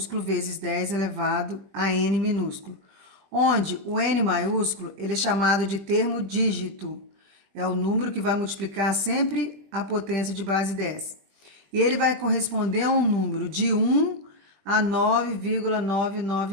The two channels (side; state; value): left; late; 20 ms